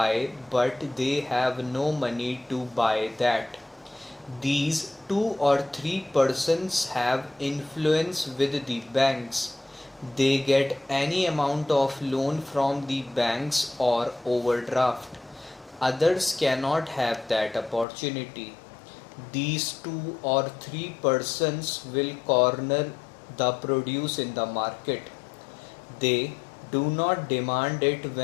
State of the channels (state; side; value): drops out; right; at 17.9 s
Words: but they have no money to buy that. These two or three persons have influence with the banks. They get any amount of loan from the banks or overdraft. Others cannot have that opportunity. These two or three persons will corner the produce in the market. They do not demand it